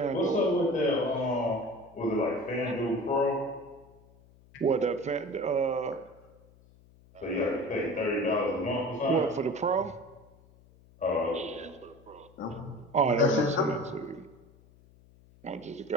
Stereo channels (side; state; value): left; noise; hum, 27 dB below the sound